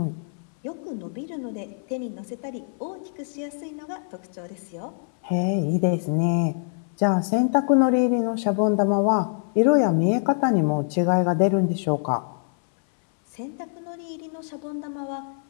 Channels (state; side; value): silent; right; 59 dB below the other